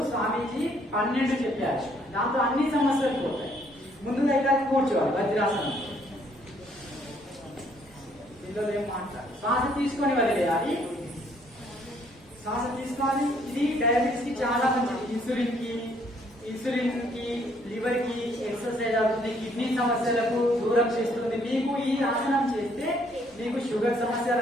స్వామీజీ 12 చెప్పారు. దాంతో అన్ని సమస్యలు పోతాయి. ముందుగా ఇక్కడ కూర్చోవాలి వజ్రాసనం. ఇందులో ఏం మాట్లాడు, శ్వాస తీసుకొని వదిలేయాలి. శ్వాస తీసుకోవాలి. ఇది డయాబెటిస్ కి చాలా మంచిది. ఇన్సులిన్ కి లివర్ కి ఎక్సర్సైజ్ అవుతుంది. కిడ్నీ సమస్యలకు దూరం చేస్తుంది. మీకు ఈ ఆసనం చేస్తే మీకు షుగర్ సమస్య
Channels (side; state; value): both; normal; correlation 0.66